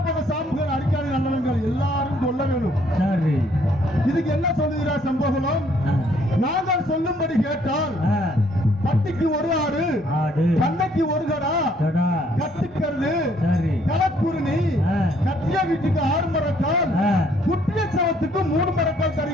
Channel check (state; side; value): normal; both; correlation 0.65